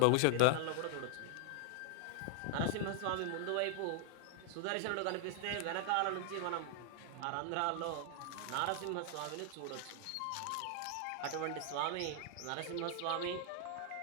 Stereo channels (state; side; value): different; both; correlation 0.00